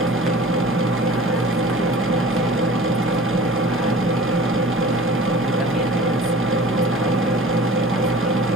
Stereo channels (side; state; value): both; normal; correlation 0.44